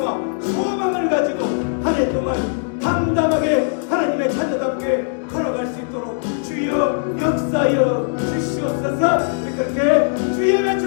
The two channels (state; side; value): silent; right; digital silence